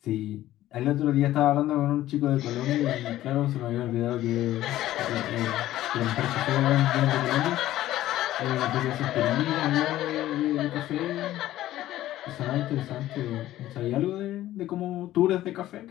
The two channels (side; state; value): right; quieter; 14.3 dB